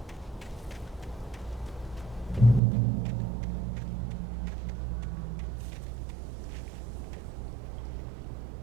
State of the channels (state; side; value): drops out; left; at 2.6 s